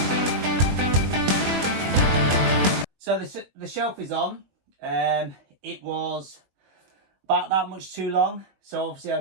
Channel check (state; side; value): late; left; 21 ms